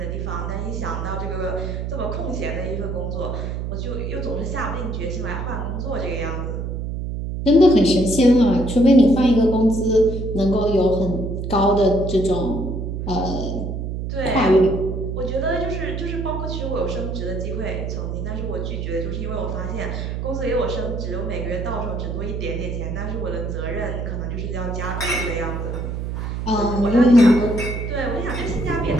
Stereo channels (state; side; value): noise; right; hum, 4 dB below the sound